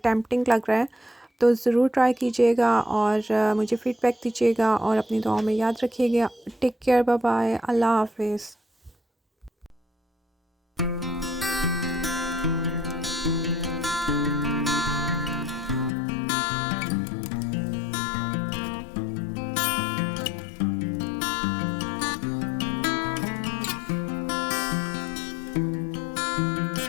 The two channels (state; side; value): drops out; right; at 15.9 s